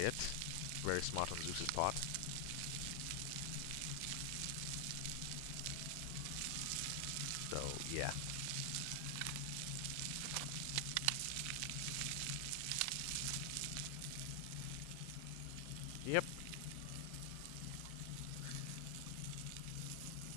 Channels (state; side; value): different; both; correlation 0.00